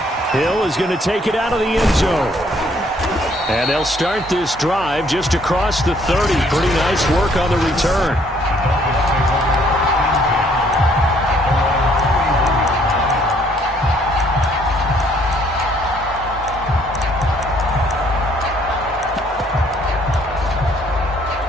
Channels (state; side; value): normal; both; correlation 0.64